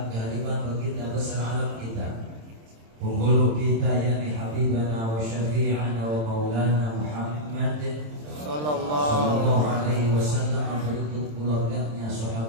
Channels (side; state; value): left; late; 27 ms